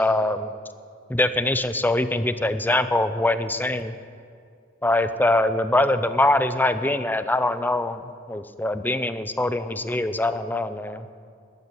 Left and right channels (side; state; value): both; normal; correlation 0.69